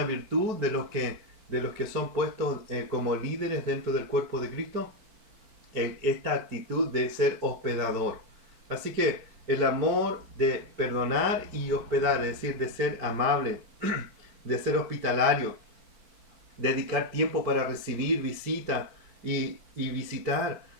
virtud de los que son puestos como líderes dentro del cuerpo de Cristo, esta actitud de ser hospedador. Así que el amor de perdonar y hospedar, es decir, de ser amable, de ser hospitalario, dedicar tiempo para recibir visita y visitar,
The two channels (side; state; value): left; late; 4.6 ms